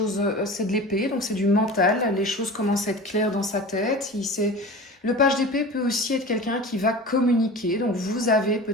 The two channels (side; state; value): both; normal; correlation 0.35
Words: c'est de l'épée, donc c'est du mental. Les choses commencent à être claires dans sa tête. Le page d'épée peut aussi être quelqu'un qui va communiquer. Donc vous avez